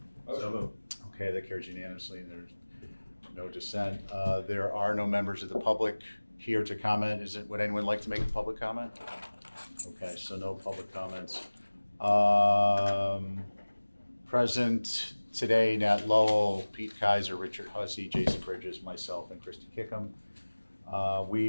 So moved. Okay, that carries unanimously and there's no dissent. There are no members of the public here to comment. Would anyone like to make a public comment? Okay, so no public comments. Present today, Nat Lowell, Pete Kaiser, Richard Hussey, Jason Bridges, myself, and Christy Kickham.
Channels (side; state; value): both; inverted; correlation -1.00